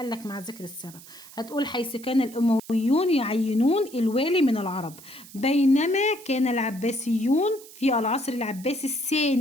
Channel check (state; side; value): noise; right; hiss, 19 dB below the sound